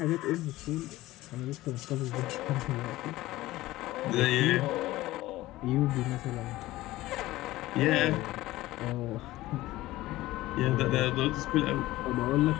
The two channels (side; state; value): right; quieter; 17.2 dB